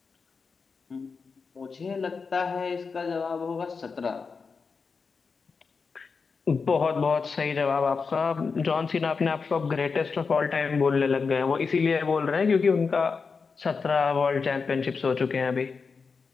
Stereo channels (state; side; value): quieter; right; 5.0 dB